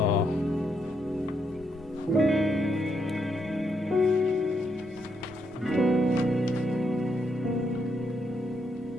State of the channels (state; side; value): normal; both; correlation 0.77